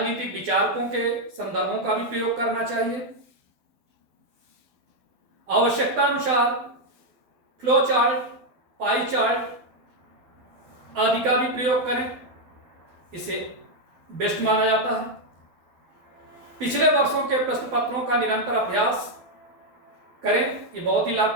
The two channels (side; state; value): left; late; 12 ms